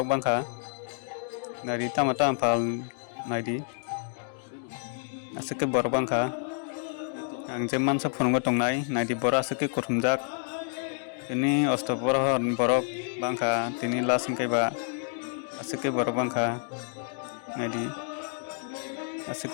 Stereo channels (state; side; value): silent; right; 59 dB below the other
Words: bangkha nari tam tam phal naidi asike borok bangkha ang je mansa phonongbo tongnai naidi bora suke kothumjak ini ostopor borok bangkha tini la singkai ba asike borok bangkha naidi